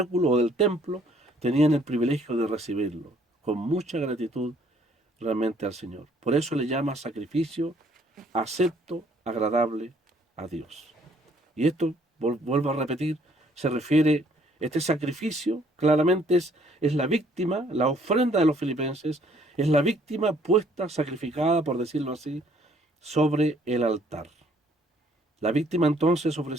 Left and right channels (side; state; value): both; normal; correlation 0.63